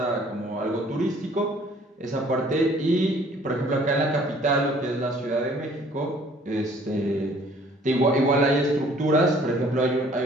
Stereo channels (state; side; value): normal; both; correlation 0.56